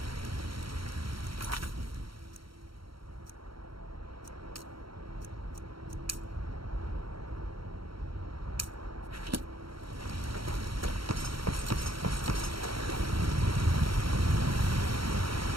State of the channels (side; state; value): left; late; 0.74 ms